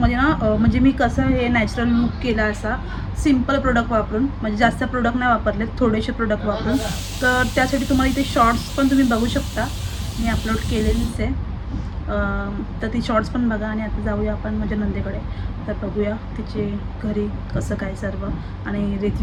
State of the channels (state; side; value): identical; both; correlation 1.00